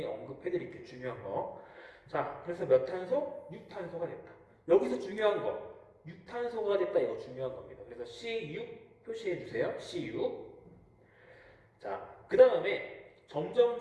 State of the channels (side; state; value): both; identical; correlation 1.00